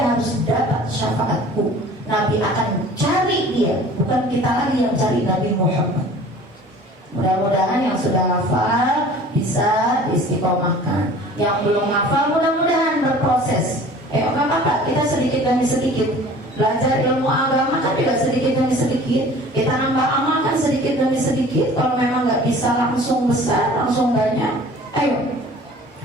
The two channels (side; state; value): both; normal; correlation 0.46